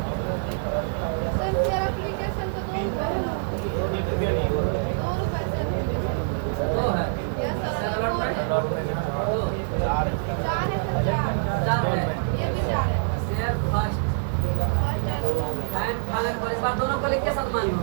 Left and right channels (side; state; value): left; silent; digital silence